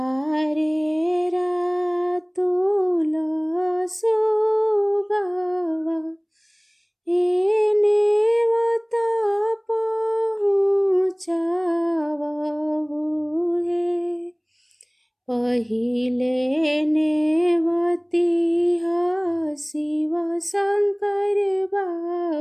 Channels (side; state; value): both; identical; correlation 1.00